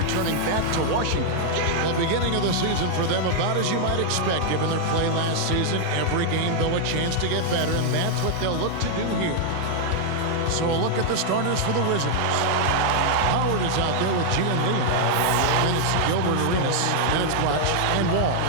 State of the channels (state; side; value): different; both; correlation 0.00